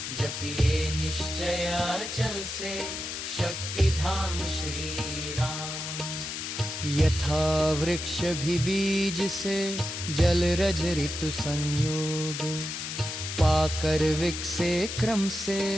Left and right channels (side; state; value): left; noise; hiss, 6 dB below the sound